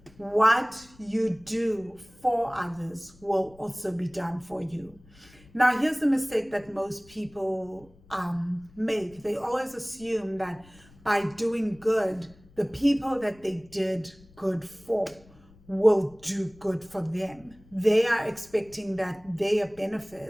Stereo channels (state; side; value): noise; left; rumble, 26 dB below the sound